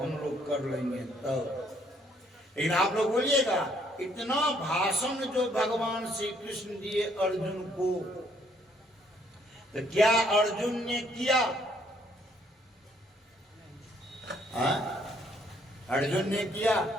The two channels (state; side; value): normal; both; correlation 0.67